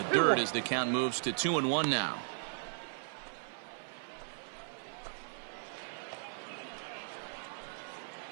dirt as the count moves to 2-1 now.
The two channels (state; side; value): silent; left; 53 dB below the other